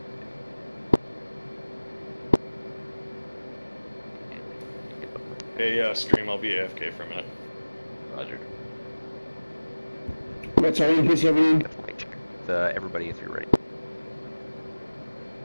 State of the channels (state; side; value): inverted; both; correlation -1.00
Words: Hey, stream, I'll be AFK for a minute. Roger. What's our increase everything? everybody if you're ready.